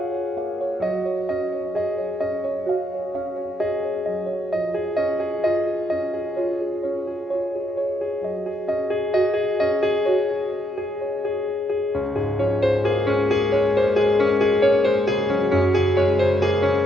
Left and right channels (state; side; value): normal; both; correlation 0.75